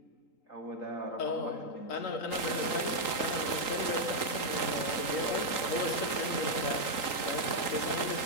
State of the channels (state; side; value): late; right; 3.8 ms